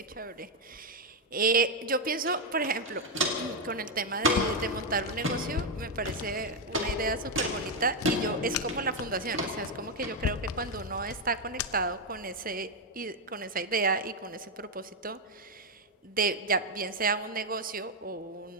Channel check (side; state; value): both; normal; correlation 0.03